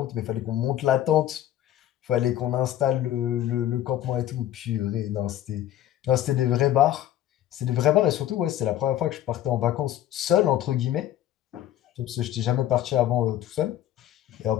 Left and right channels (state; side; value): quieter; right; 12.5 dB